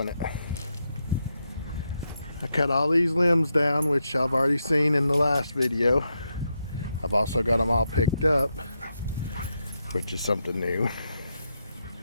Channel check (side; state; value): both; inverted; correlation -0.83